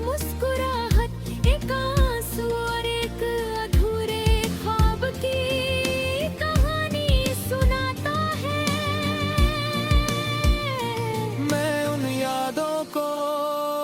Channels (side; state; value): both; identical; correlation 1.00